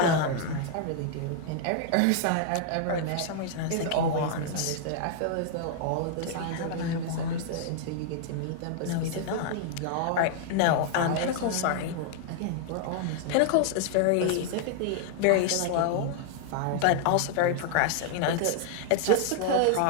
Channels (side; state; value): both; different; correlation 0.00